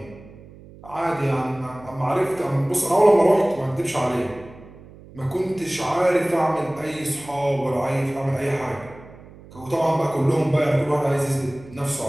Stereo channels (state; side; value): noise; right; hum, 20 dB below the sound